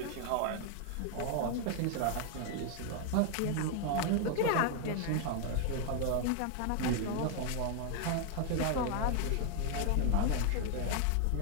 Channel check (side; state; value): both; different; correlation 0.00